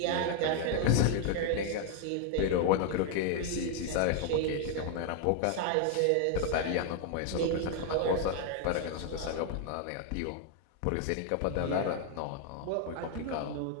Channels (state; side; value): different; both; correlation 0.00